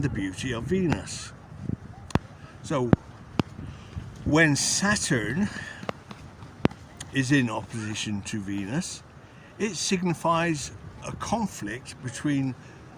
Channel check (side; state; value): both; identical; correlation 1.00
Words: the beauty of Venus. So when Saturn is in opposition to Venus, it signifies a conflict between